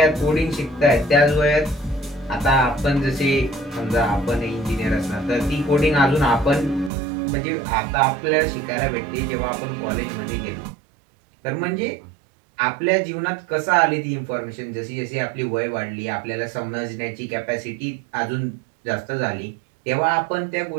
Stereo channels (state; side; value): drops out; left; at 6.9 s